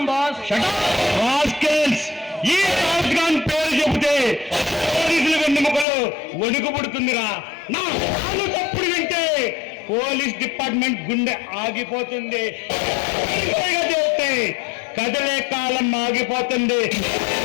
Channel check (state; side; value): drops out; right; at 5.9 s